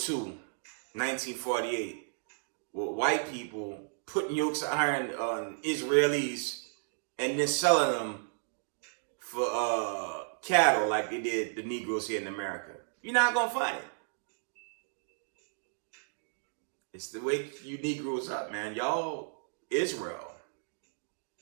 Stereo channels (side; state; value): left; silent; digital silence